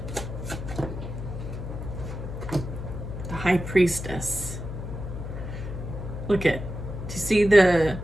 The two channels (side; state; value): left; noise; hum, 7 dB below the sound